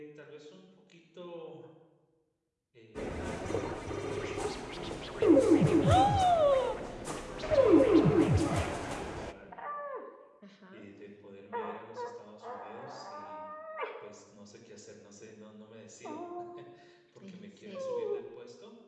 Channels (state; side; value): identical; both; correlation 1.00